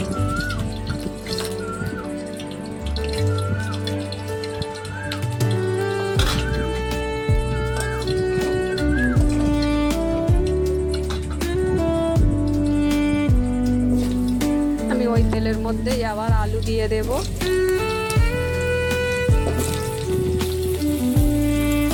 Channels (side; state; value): both; identical; correlation 1.00